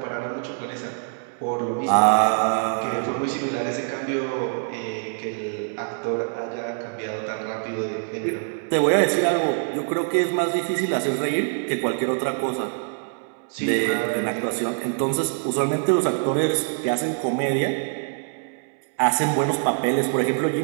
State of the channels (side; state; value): left; silent; digital silence